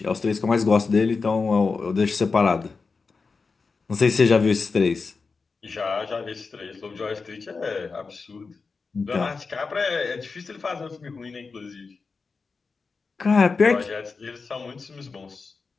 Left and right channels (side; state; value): right; quieter; 4.5 dB